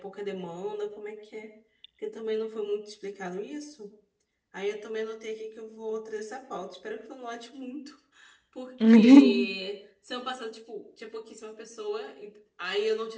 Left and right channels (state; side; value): identical; both; correlation 1.00